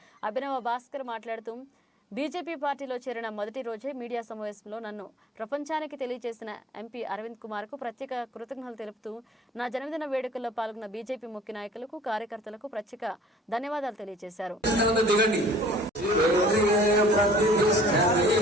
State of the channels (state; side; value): normal; both; correlation 0.53